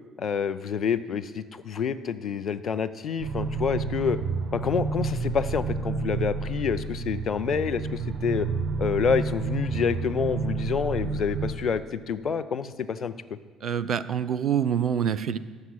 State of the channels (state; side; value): normal; both; correlation 0.53